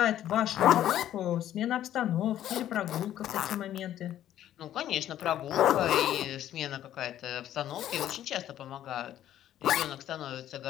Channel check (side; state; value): right; quieter; 11.9 dB